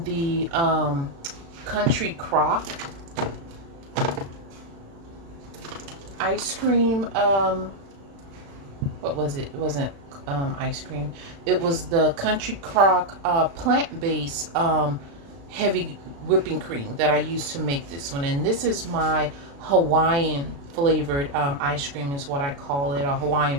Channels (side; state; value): left; late; 36 ms